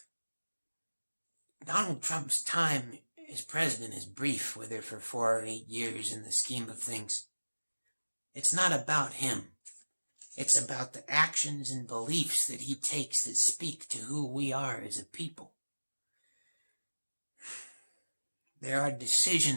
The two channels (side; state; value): both; inverted; correlation -1.00